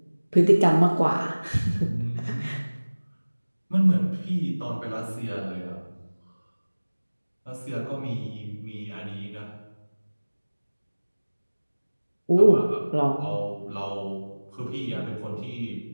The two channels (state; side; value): inverted; both; correlation -1.00